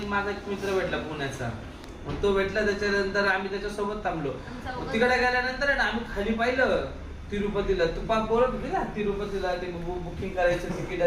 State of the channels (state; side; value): identical; both; correlation 1.00